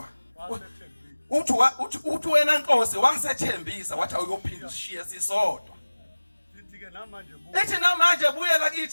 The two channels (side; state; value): both; inverted; correlation -1.00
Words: uthi wena Nkosi wasethembisa wathi awuyophinda ushiya sisodwa ethi namanje buyela